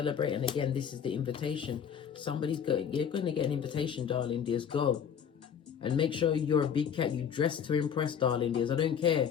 And again, this is the invitation. You're going to get an invitation, darling dears. Go. And make sure you're a big cat. You dress to impress, darling dears. I don't care.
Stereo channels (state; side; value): quieter; right; 7.9 dB